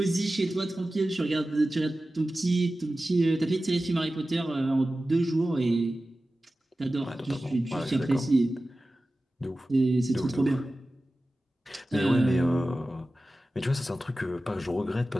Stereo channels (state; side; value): normal; both; correlation 0.95